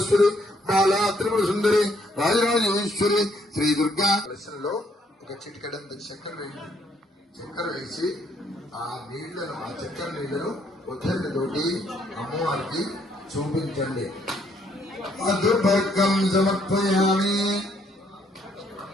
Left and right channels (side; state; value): both; normal; correlation 0.69